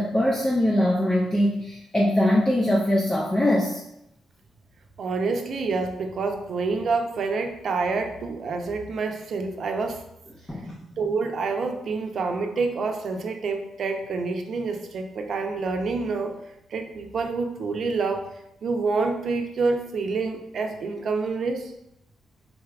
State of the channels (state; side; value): normal; both; correlation 0.85